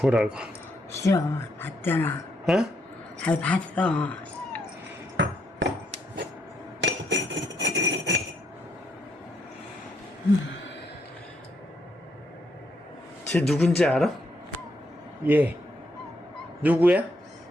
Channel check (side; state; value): both; normal; correlation 0.75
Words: 싫어. 봤잖아. 어? 잘 봤어. 쟤 누군지 알아? 얘 누구야?